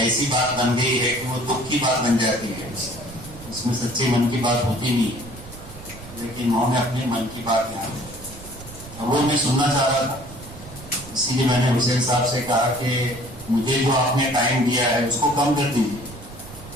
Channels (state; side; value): noise; right; rumble, 16 dB below the sound